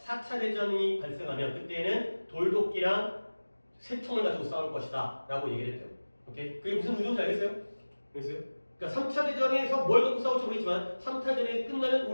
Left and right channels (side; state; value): both; inverted; correlation -1.00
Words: 대전이 발생하면 그때는 돌도끼랑 새총을 가지고 싸울 것이다. 라고 얘기를 했대요. 오케이? 그게 무슨 의도인지 알겠어요? 알겠어요? 그러니까 3차 대전에서 뭘 갖고 싸울지 모르겠지만 3차 대전이 끝나면